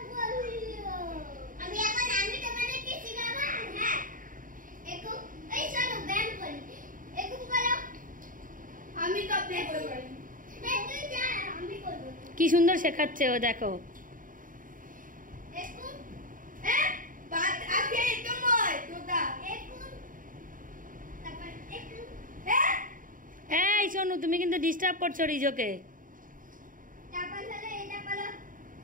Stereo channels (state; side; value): late; left; 0.39 ms